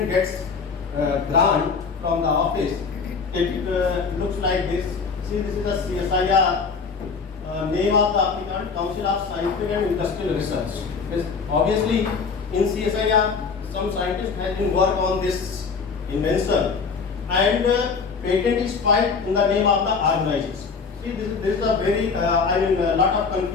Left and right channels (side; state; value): right; quieter; 5.2 dB